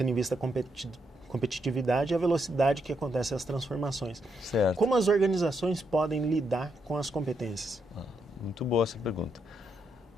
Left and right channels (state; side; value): normal; both; correlation 0.79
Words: em vista a competitividade e a velocidade que acontecem as transformações. Certo. Como as organizações podem lidar com as competências? Muito boa essa pergunta.